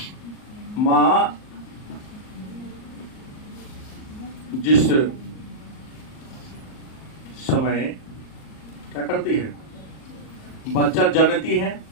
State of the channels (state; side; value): late; right; 38 ms